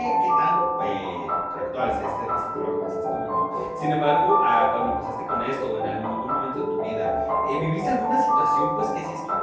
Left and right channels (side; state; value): both; identical; correlation 1.00